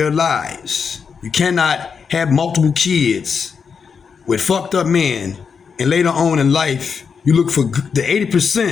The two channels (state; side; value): quieter; right; 6.1 dB